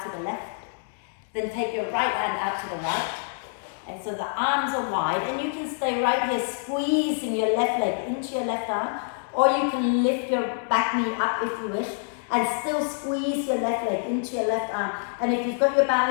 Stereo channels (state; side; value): silent; right; digital silence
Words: to the left. Then take your right hand out to the right. And so the arms are wide, and you can stay right here squeezing your left leg into your left arm, or you can lift your back knee up if you wish, and still squeeze your left leg into your left arm. And if you've got your